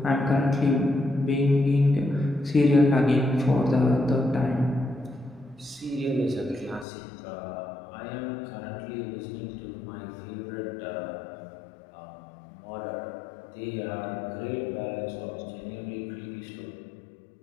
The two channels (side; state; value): right; drops out; at 6.9 s